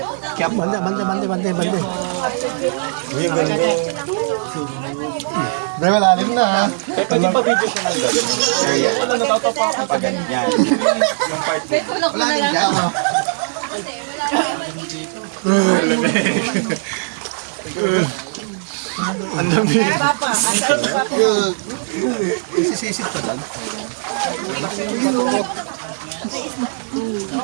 3. Bande. Uy, ang ganda. Dahil malalim na ha. Eh, pwede pa video siya ng gano'n. Area. Pag ganyan. Yung part dito. Malalim dyan. Ang lamig. Papa, asan si Papa? Isisisit pa dyan.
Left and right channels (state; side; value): silent; left; digital silence